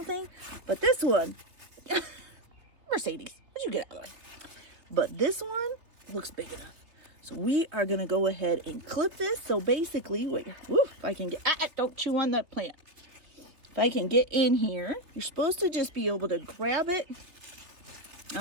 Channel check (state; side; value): late; left; 3.4 ms